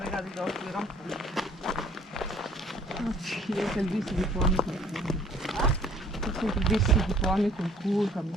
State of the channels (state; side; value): normal; both; correlation 0.57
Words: dopo di rampone. Sì, io che il visto di fuori col culo. Io che il visto di fuori col culo, mi